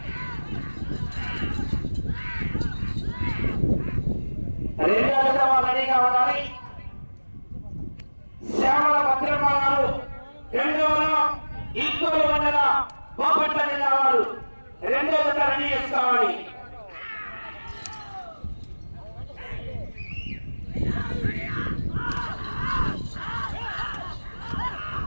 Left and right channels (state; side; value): inverted; both; correlation -1.00